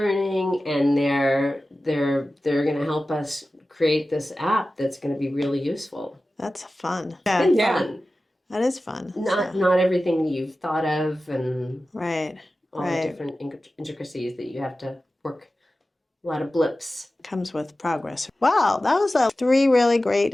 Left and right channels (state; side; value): normal; both; correlation 0.95